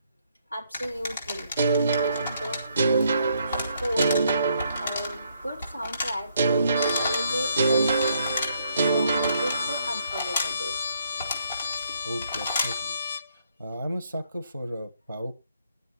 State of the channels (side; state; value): both; inverted; correlation -0.72